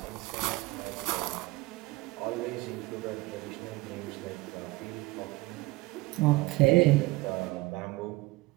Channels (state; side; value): quieter; left; 20.7 dB